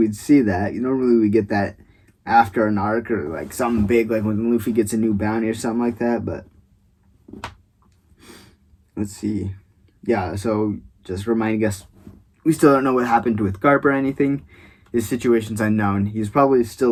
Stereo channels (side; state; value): both; identical; correlation 1.00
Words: see that. Normally we get that after an arc or like something big, like when Luffy gets a new bounty or something like that, but let's see. Yeah, so just reminding us, we still don't know what happened with Garp or anything. His situation's unknown. He's probably